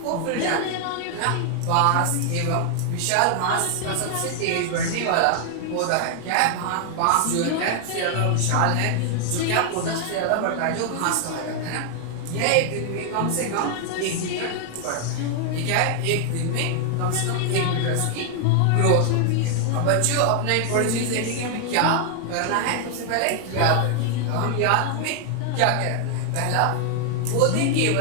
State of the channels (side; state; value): both; different; correlation 0.00